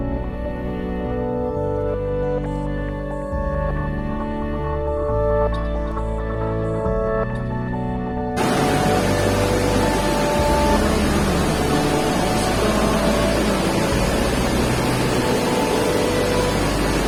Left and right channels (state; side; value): identical; both; correlation 1.00